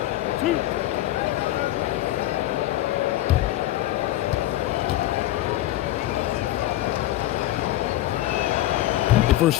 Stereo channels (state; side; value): quieter; right; 15.0 dB